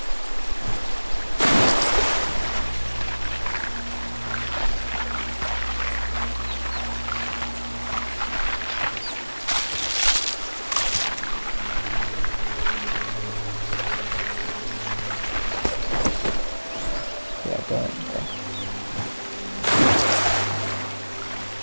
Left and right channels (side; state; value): both; inverted; correlation -1.00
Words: Yeah, go ahead. Go.